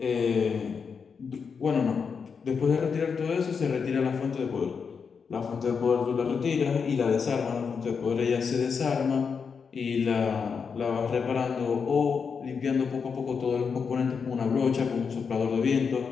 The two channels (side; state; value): right; quieter; 5.9 dB